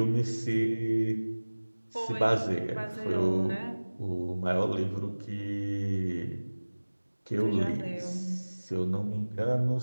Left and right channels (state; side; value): inverted; both; correlation -1.00